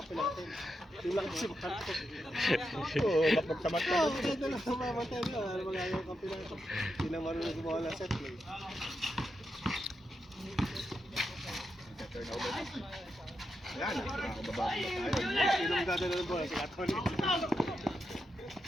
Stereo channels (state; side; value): normal; both; correlation 0.86